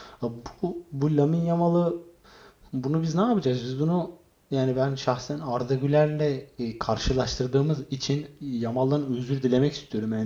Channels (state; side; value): identical; both; correlation 1.00